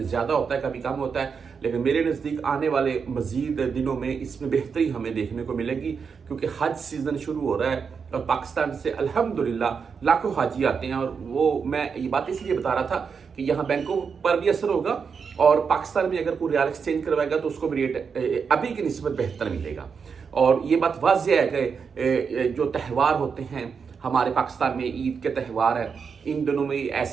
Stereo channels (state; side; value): quieter; left; 6.0 dB